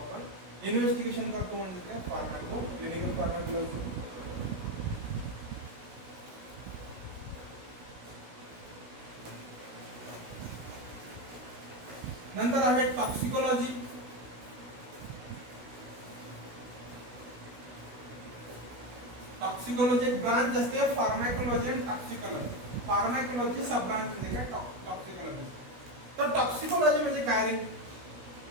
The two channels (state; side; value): late; left; 16 ms